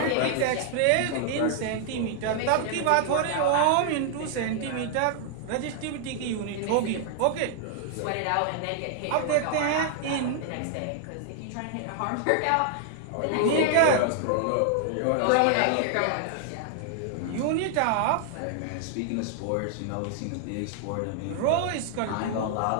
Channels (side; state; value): both; different; correlation 0.00